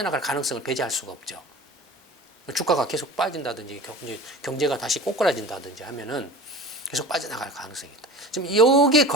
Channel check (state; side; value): normal; both; correlation 0.36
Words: 가능성을 배제할 수가 없죠. 주가가 계속 빠진다든지 경제가 다시 꼬꾸라진다든지 하면은 계속 빠져나갈 가능성이 있다. 지금 여기에